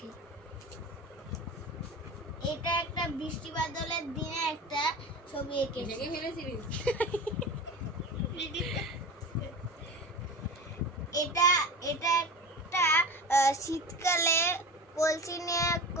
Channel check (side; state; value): both; normal; correlation 0.31